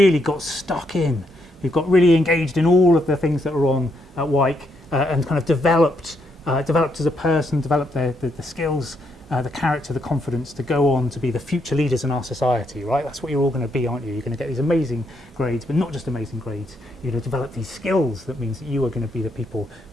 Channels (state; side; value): normal; both; correlation 0.77